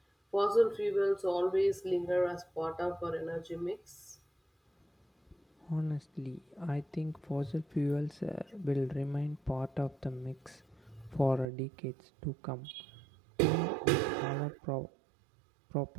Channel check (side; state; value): left; drops out; at 11.5 s